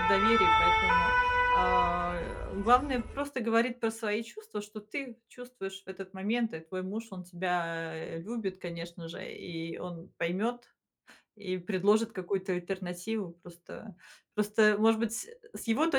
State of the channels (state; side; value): identical; both; correlation 1.00